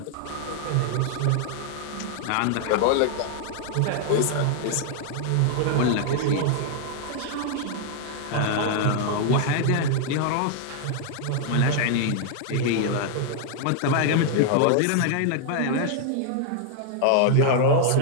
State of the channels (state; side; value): different; both; correlation 0.00